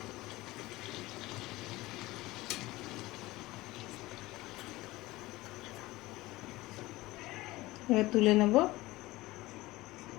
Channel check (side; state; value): right; quieter; 19.2 dB